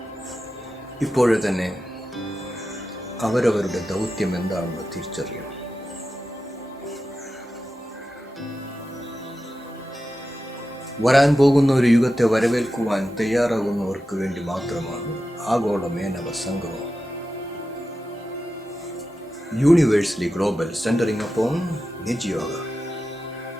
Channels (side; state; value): both; normal; correlation 0.91